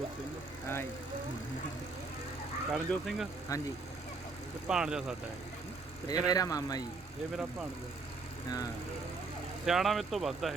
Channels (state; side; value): quieter; left; 3.8 dB